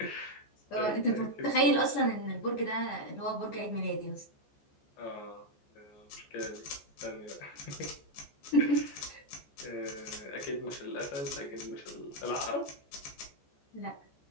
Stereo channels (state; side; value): late; right; 14 ms